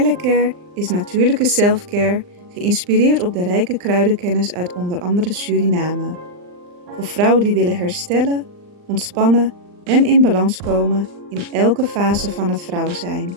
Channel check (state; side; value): late; left; 39 ms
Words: is natuurlijke selfcare, geïnspireerd op de rijke kruidenkennis uit onder andere Suriname. Voor vrouwen die willen herstellen, ontspannen en in balans komen in elke fase van het vrouw zijn.